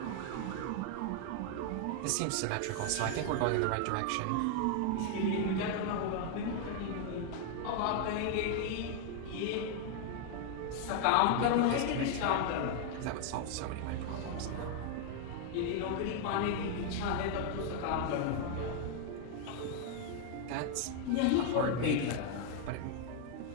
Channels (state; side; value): different; both; correlation 0.00